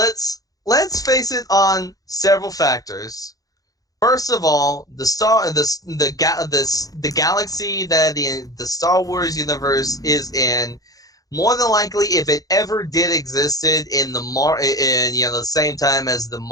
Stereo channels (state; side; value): late; right; 0.17 ms